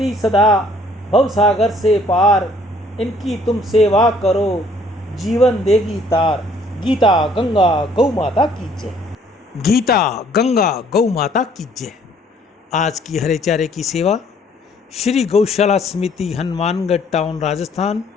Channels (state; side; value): normal; both; correlation 0.60